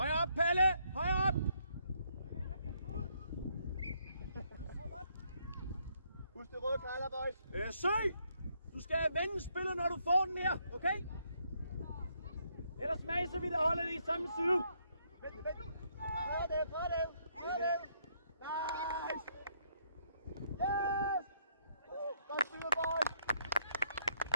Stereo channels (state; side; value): inverted; both; correlation -0.72